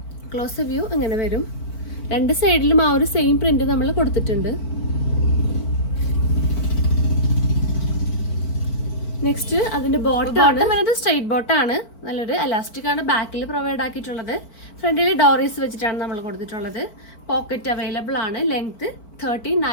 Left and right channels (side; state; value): right; late; 4.5 ms